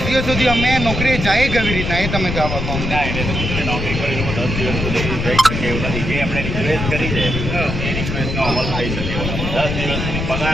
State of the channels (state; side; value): noise; left; rumble, 3 dB below the sound